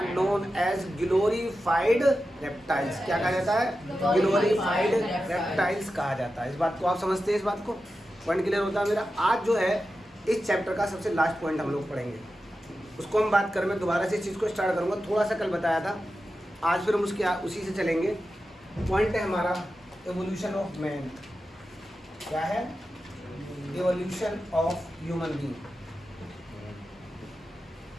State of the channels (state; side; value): normal; both; correlation 0.91